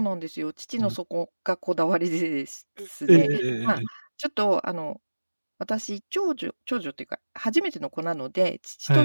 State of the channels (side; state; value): both; inverted; correlation -1.00